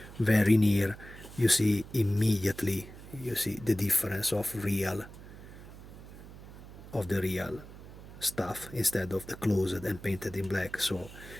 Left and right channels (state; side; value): noise; right; hum, 16 dB below the sound